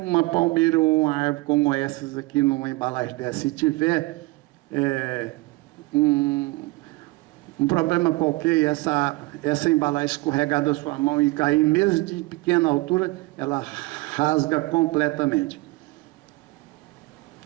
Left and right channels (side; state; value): left; quieter; 22.5 dB